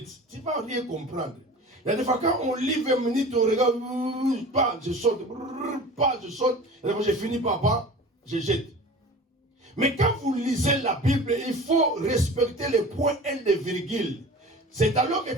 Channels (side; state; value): both; normal; correlation 0.38